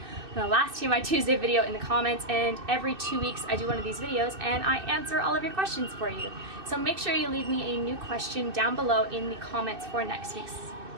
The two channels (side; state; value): left; late; 2.6 ms